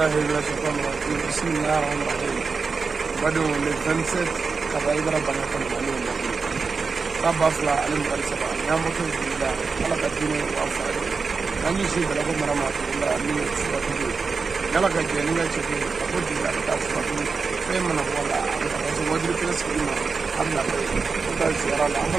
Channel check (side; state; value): left; quieter; 4.8 dB